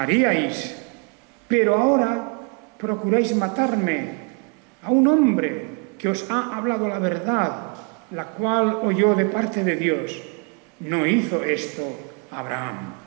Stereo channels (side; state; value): left; quieter; 35.4 dB